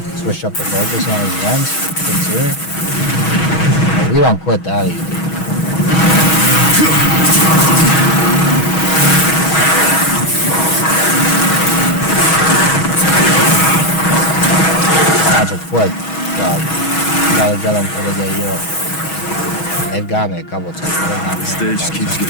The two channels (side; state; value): right; late; 6.2 ms